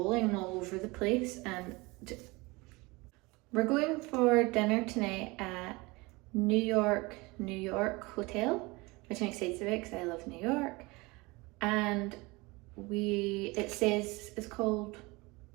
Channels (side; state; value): left; quieter; 24.1 dB